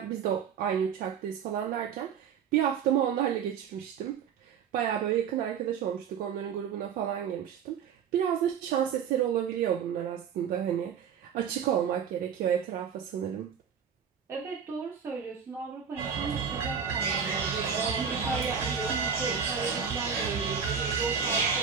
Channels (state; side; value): quieter; left; 7.4 dB